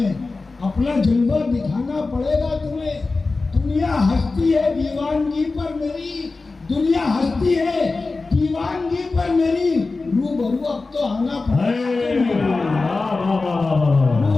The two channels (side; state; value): right; quieter; 3.7 dB